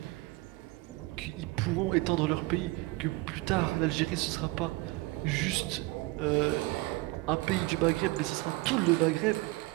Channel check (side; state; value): left; quieter; 21.8 dB